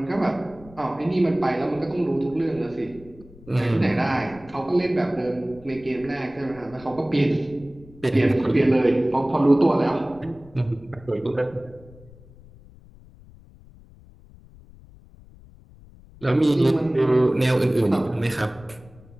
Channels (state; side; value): noise; left; rumble, 23 dB below the sound